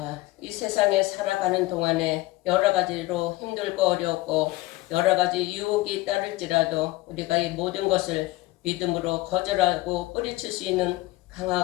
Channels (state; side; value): quieter; right; 19.2 dB